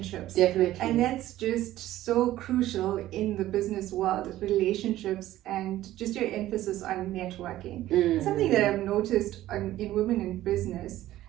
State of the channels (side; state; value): left; quieter; 14.5 dB